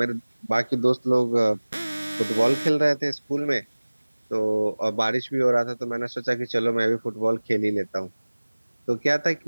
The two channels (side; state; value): both; inverted; correlation -1.00